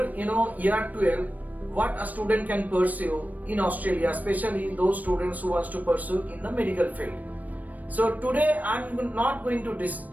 year 12, what a student can pursue in Australia, especially those students who wants to pursue in the medical field. So today I'm not going to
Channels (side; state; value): left; late; 0.077 ms